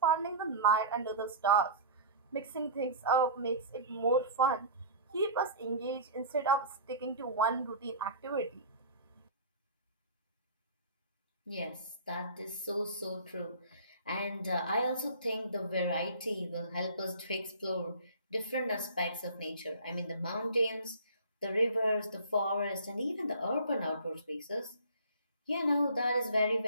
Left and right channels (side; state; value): both; inverted; correlation -0.39